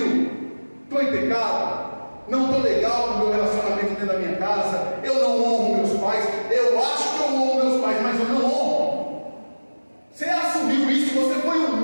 Estou em pecado, não estou legal no meu relacionamento dentro da minha casa, eu não honro meus pais, eu acho que eu honro meus pais, mas eu não honro. Você assumiu isso, você foi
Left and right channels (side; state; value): both; inverted; correlation -1.00